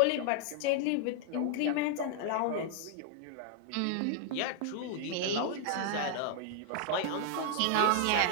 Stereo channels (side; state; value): both; different; correlation 0.00